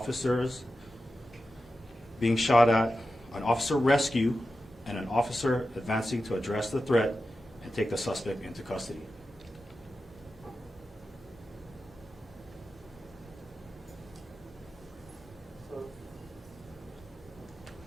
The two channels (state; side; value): normal; both; correlation 0.92